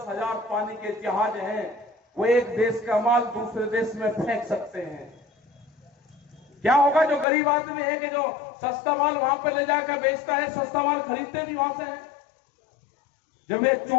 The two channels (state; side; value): drops out; right; at 7.2 s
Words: हजार पानी के जहाज हैं, वो एक देश का माल दूसरे देश में फेंक सकते हैं। क्या होगा? जो गरीब आदमी है कि जो सस्ता माल वहां पर ले जाकर बेचता है, सस्ता माल खरीदते भी वहां से है। जब ये